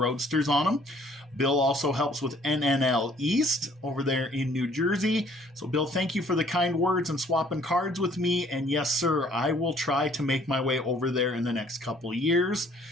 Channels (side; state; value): both; normal; correlation 0.59